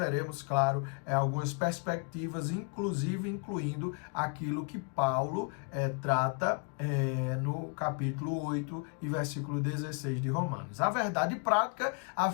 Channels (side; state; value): right; quieter; 38.1 dB